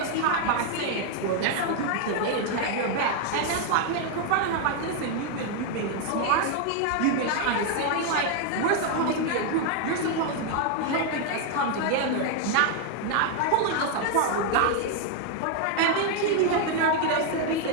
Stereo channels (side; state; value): both; different; correlation 0.00